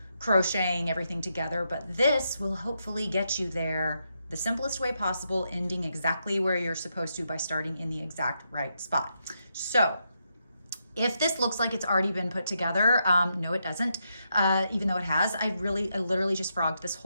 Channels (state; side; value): inverted; both; correlation -0.82